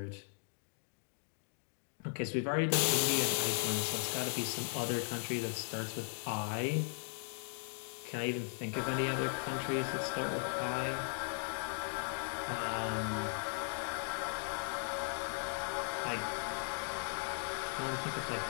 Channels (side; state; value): right; silent; digital silence